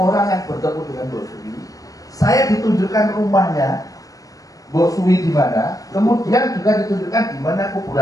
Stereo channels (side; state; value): right; late; 0.17 ms